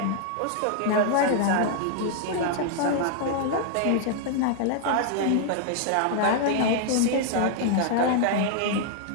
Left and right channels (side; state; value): both; different; correlation 0.00